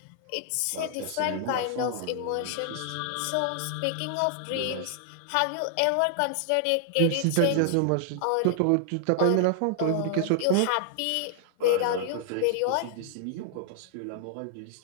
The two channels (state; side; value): different; both; correlation 0.00